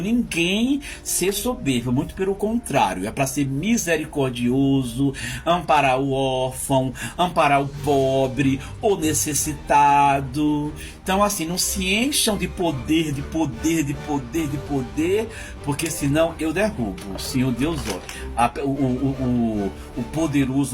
ser soberbo, muito pelo contrário, é para ser misericordioso, amparar o órfão, amparar o pobre, o necessitado. Então assim, não se encham de poder, de poder, de poder, de poder, porque senão eu derrubo. O Senhor Deus, o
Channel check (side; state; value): both; identical; correlation 1.00